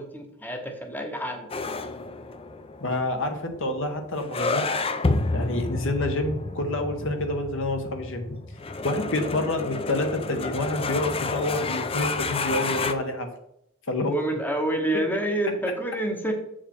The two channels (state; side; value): normal; both; correlation 0.25